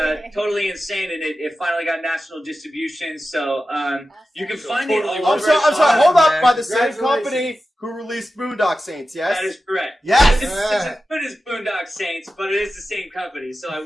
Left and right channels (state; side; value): normal; both; correlation 0.93